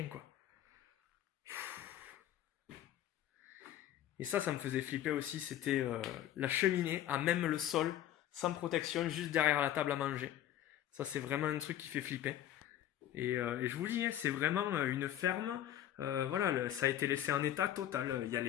quoi. Et ça me faisait flipper aussi. C'était la cheminée à même le sol, sans protection, juste derrière la table à manger. Ça, c'est vraiment un truc qui fait flipper. Et je vous dis, hein, c'est vraiment une ferme. Voilà, ça a été laissé en état total. Il y a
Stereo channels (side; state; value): right; quieter; 11.9 dB